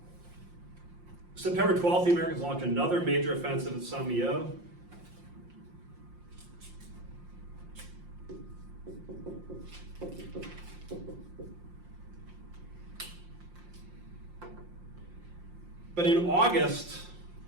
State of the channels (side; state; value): left; late; 5.7 ms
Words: September 12th, the Americans launch another major offensive at Saint-Malo. But in August,